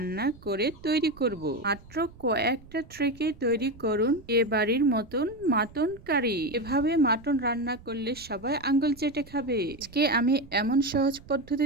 করে তৈরি করব। মাত্র কয়েকটা ট্রিকে তৈরি করুন বিয়েবাড়ির মতন মাটন কারি। এভাবে মাটন রান্না করলে সবাই আঙ্গুল চেটে খাবে। আজকে আমি এমন সহজ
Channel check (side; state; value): right; noise; rumble, 21 dB below the sound